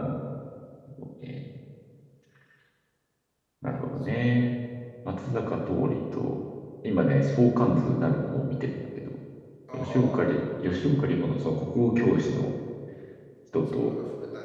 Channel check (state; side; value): identical; both; correlation 1.00